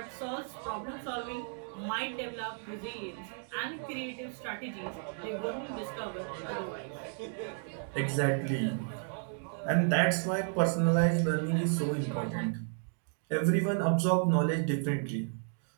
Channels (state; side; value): silent; left; 56 dB below the other